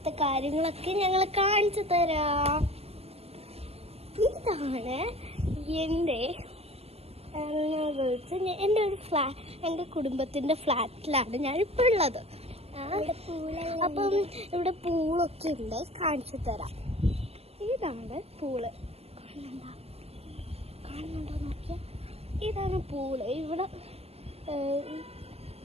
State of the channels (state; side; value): late; left; 0.29 ms